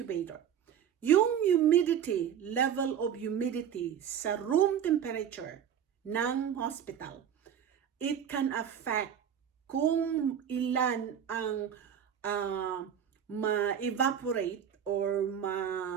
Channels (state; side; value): quieter; left; 8.7 dB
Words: Yung humidity, level of humidity sa room temperature ng hospital, it can affect kung ilan ang ma-evaporate or